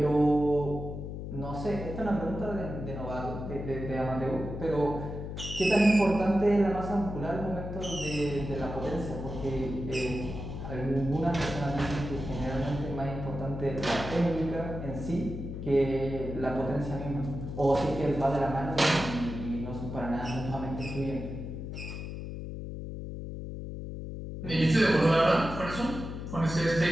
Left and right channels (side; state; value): left; noise; hum, 7 dB below the sound